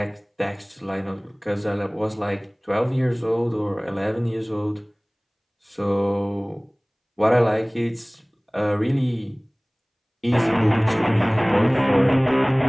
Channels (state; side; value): identical; both; correlation 1.00